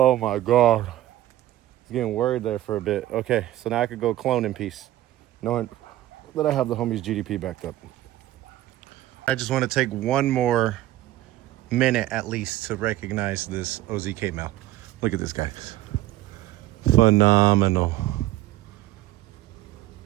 my God. I was getting worried there for a bit. Okay, so now I could go clone in peace, knowing that I have the homie's GDP backed up. I just want to take one more minute at least to recognize this OZK male. Look at this guy. Phenomenal.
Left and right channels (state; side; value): quieter; left; 14.9 dB